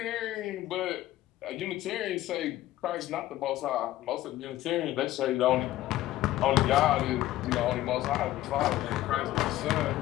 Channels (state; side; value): quieter; right; 15.0 dB